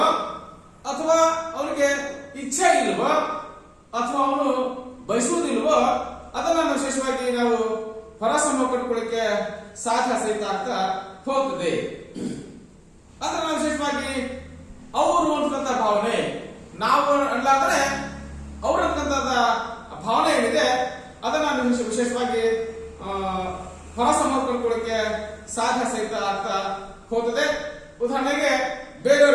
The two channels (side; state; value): both; identical; correlation 1.00